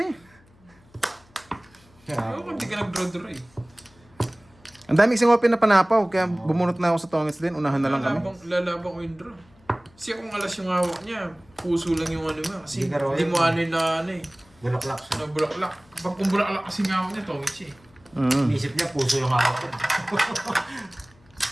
eh. Ayaw kung di ka nag-draw-draw eh. Ang daming isang open na panapaw. Kaya bumunot na ako sa Tongits din. Unahan na lang kami. Lalabang ko yung draw. Kasi kung alas yung hawak niya, puso lang yung ano mo. Kasi Hindi ka raw hindi yun. mo ano yung na ano eh. Bulaklak siya. Na bulaklak. Pag kung bulaklak kasi nga hawak niya, tongits siya eh. Inisip niya, puso yung hawak ko.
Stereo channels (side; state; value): left; noise; hum, 29 dB below the sound